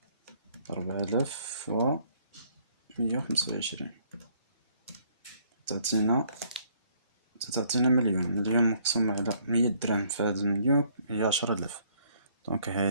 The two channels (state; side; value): inverted; both; correlation -0.64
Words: 4125 تعطينا مليون مقسوم على 100 درهم في هذا المليون هي 10000. دونك